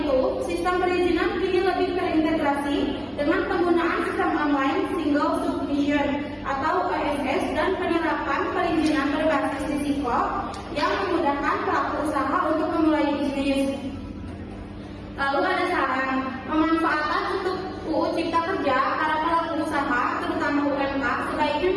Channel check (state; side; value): identical; both; correlation 1.00